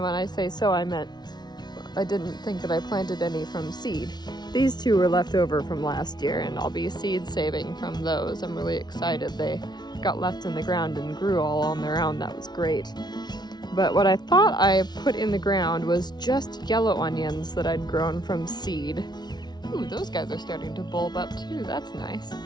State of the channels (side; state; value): right; late; 0.20 ms